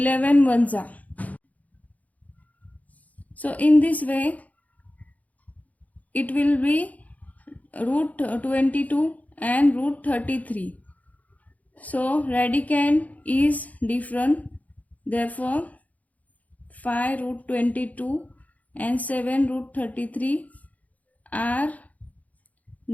ones are. So in this way it will be root 22 and root 33. So radicand is different, therefore 5 root 22 and 7 root 33 are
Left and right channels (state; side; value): late; right; 0.074 ms